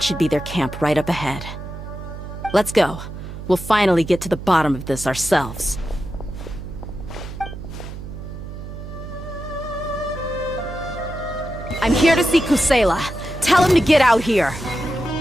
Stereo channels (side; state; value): right; noise; hum, 10 dB below the sound